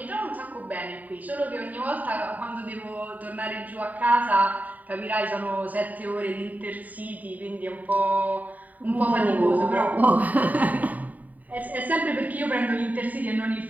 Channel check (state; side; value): late; left; 0.076 ms